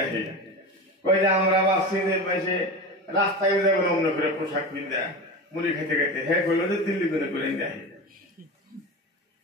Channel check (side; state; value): both; normal; correlation 0.26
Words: কই যে আমরা বাসি বসে রাস্তায় যাবো অন্য করে পোশাক পিন্দা মুড়ি খেতে খেতে, হ্যাঁ কইলো যে দিল্লি গুনে গ্রাইন দেখি।